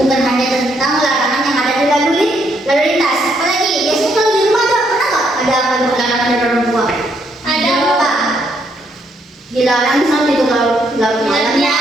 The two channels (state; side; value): normal; both; correlation 0.73